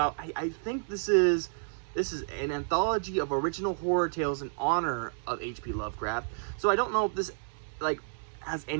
I think this is an anthology of original horror tales in honor of H.P. Lovecraft. So I don't know if this has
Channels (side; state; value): left; silent; digital silence